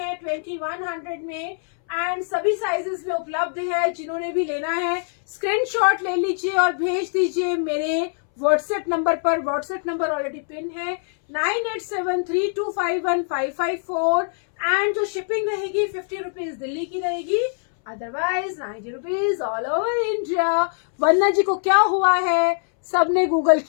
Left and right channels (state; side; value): silent; right; 63 dB below the other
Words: 2100 में, एंड सभी साइजेस में उपलब्ध है। जिन्होंने भी लेना है स्क्रीनशॉट ले लीजिए और भेज दीजिए मेरे व्हाट्सएप नंबर पर, व्हाट्सएप नंबर ऑलरेडी पिन है 9873251554, एंड जो शिपिंग रहेगी 50 रुपीज दिल्ली की रहेगी, otherwise 90 rupees all over India. Vandana ji को क्या हुआ है, सबने गूगल